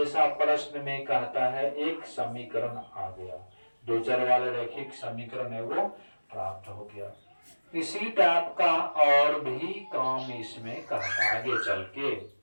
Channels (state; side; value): inverted; both; correlation -1.00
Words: प्रश्न में कहता है। एक समीकरण आ गया, दो चर वाले रैखिक समीकरण है वो प्राप्त हो गया। इसी टाइप का और भी काम इसमें कहता है आगे चल के।